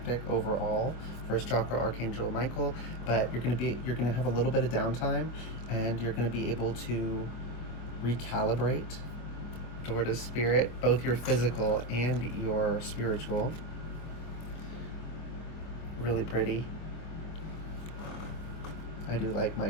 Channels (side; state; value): right; late; 25 ms